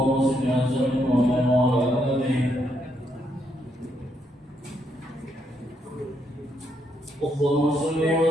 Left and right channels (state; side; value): normal; both; correlation 0.76